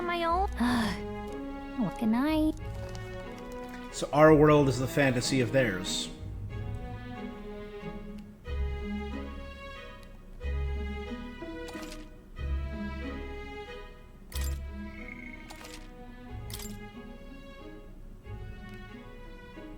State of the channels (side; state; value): both; identical; correlation 1.00